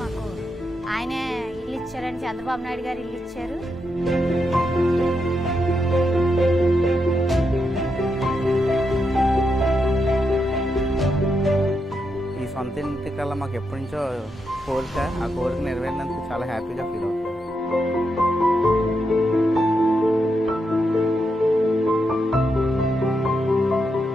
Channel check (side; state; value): both; normal; correlation 0.83